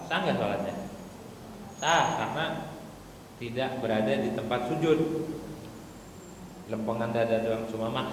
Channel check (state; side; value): identical; both; correlation 1.00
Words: sah nggak sholatnya? Sah, karena tidak berada di tempat sujud. Lempengan dada doang, cuma